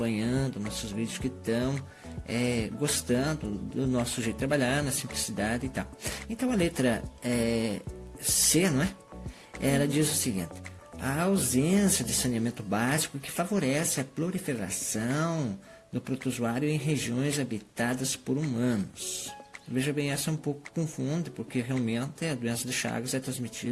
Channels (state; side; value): identical; both; correlation 1.00